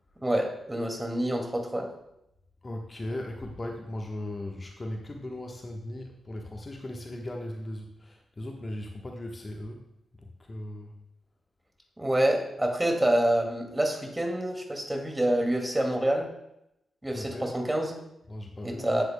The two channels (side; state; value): both; normal; correlation 0.96